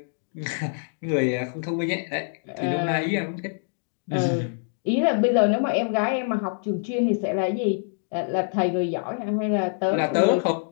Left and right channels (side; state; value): right; silent; digital silence